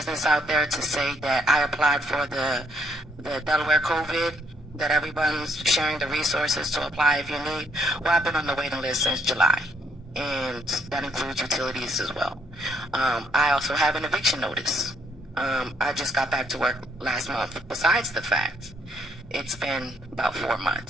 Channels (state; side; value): normal; both; correlation 0.70